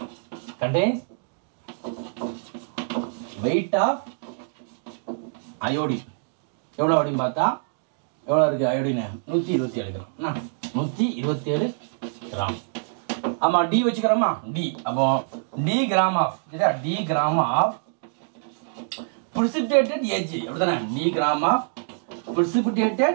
contains weight of iodine எவ்வளோ அப்படின்னு பார்த்தா எவ்வளோ இருக்கு அயோடின் 127 கிராம் 127 கிராம் ஆமா டி வச்சுக்கிறோமா டி அப்போ டி கிராம் ஆஃப் சரியா D gram of precipitated AgI அப்படிதானே D gram of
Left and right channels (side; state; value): left; silent; digital silence